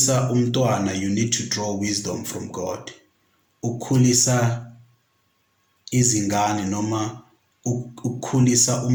umntwana, you need to draw wisdom from God. Ukukhulisa izingane noma ukukhulisa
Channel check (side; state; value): both; identical; correlation 1.00